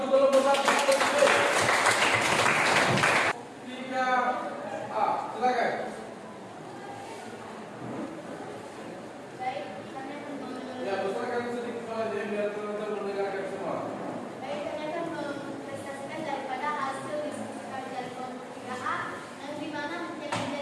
kelompok 1B. 3A, silakan. Baik, kami akan Ya, besarkan sedikit suara jadi biar teman-teman mendengarkan semua. Baik, kami akan mempresentasikan daripada hasil diskusi kami dari kelompok 3A yang dimana yang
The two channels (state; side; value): identical; both; correlation 1.00